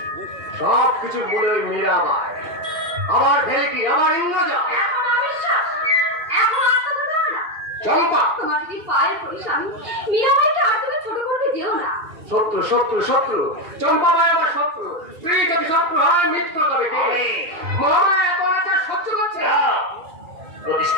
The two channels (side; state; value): left; late; 2.8 ms